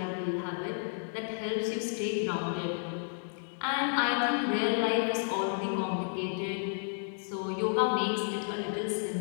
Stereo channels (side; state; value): right; silent; digital silence